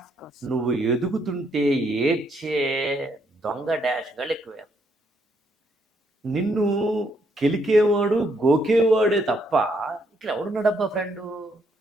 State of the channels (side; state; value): both; normal; correlation 0.73